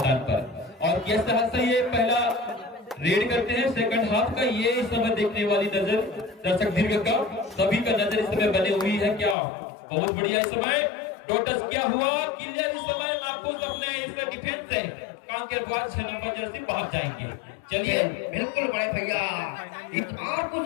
पर। और किस तरह से ये पहला रेड करते हैं सेकंड हाफ का, ये इस समय देखने वाली नजर दर्शक दीर्घ का सभी का नजर इस समय बनी हुई है। क्या बहुत बढ़िया इस समय टोटस क्या हुआ, क्लियर इस समय नापूस अपने इस डिफेंस से कांकेर बॉयज 6 नंबर जर्सी बाहर जाएंगे। चलिए बिल्कुल बड़े भैया, इस बार कुछ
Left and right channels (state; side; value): drops out; right; at 9.3 s